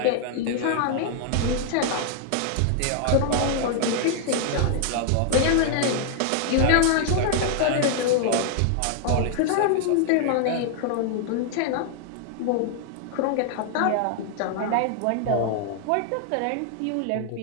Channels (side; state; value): both; different; correlation 0.00